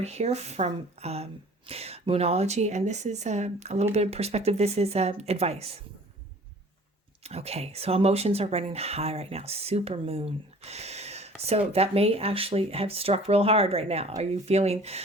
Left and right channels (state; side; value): normal; both; correlation 0.49